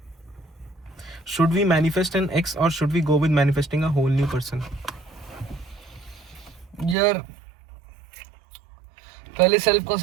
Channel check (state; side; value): drops out; left; at 7.0 s